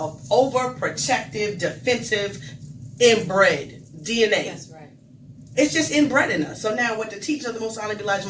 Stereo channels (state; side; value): identical; both; correlation 1.00